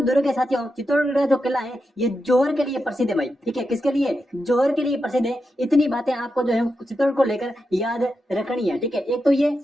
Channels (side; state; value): both; normal; correlation 0.87